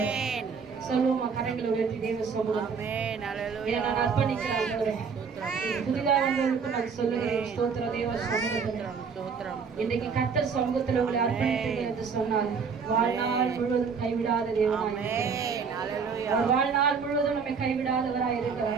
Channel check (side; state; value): left; quieter; 5.8 dB